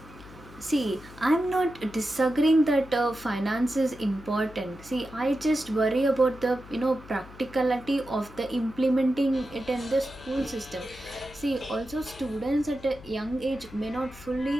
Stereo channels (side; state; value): left; noise; hum, 19 dB below the sound